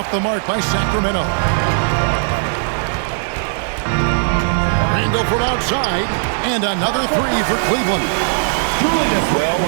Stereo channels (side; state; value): left; silent; digital silence